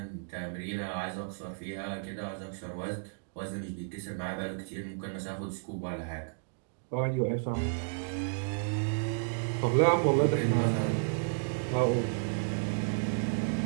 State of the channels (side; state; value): left; silent; digital silence